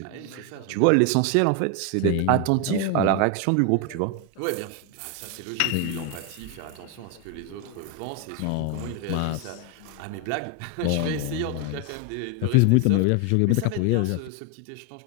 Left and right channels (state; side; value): different; both; correlation 0.01